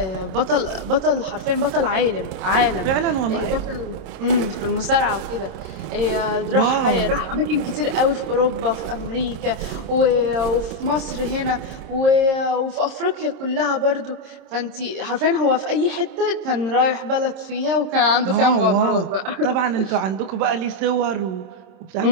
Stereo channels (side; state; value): left; late; 26 ms